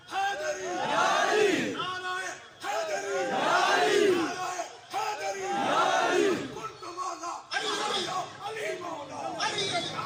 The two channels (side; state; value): both; identical; correlation 1.00